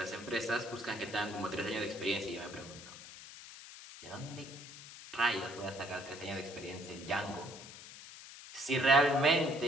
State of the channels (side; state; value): left; noise; hiss, 15 dB below the sound